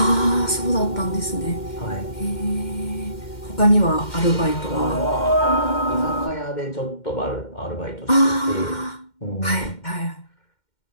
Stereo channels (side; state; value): right; late; 2.1 ms